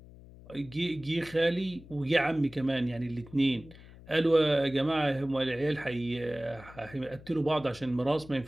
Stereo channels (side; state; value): left; noise; hum, 19 dB below the sound